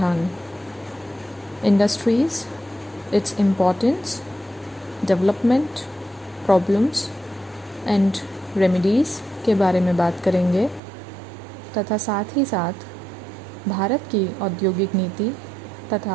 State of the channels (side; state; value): left; drops out; at 10.8 s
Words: industries, its importance, development, problems and remedies के बारे में बात करेंगे तथा साथ ही साथ भारत की औद्योगिक नीति